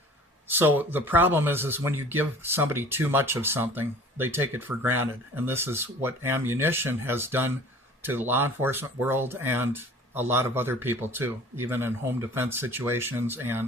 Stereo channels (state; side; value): normal; both; correlation 0.46